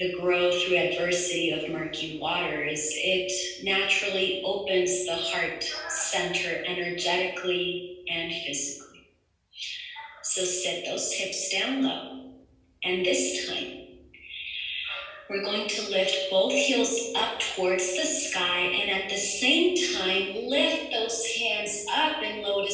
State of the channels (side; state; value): both; identical; correlation 1.00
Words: growth through adversity of murky waters, it naturally opens the heart center energetically and physically. So sit those hips down low. And this time, we're going to lift both heels up towards the sky, and at the same time, lift those hands up in